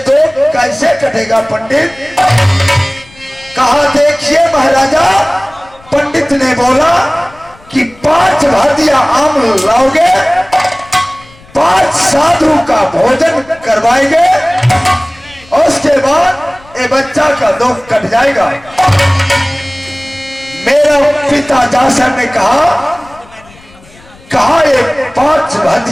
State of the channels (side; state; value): left; noise; rumble, 25 dB below the sound